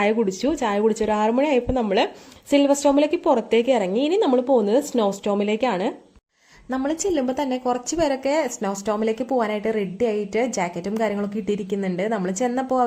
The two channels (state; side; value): identical; both; correlation 1.00